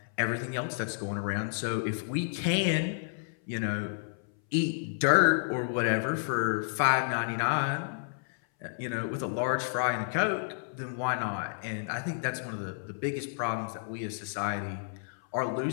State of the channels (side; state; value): right; silent; 57 dB below the other